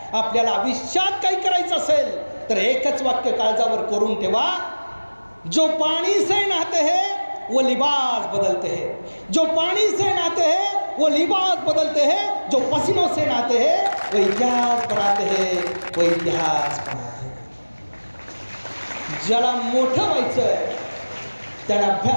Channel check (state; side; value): inverted; both; correlation -1.00